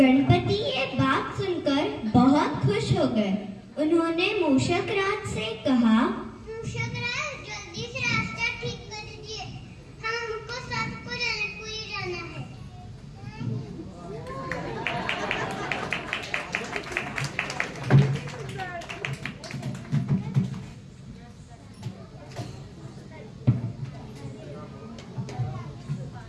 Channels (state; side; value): identical; both; correlation 1.00